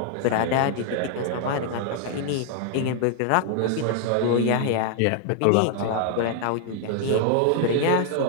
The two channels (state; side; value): different; both; correlation 0.00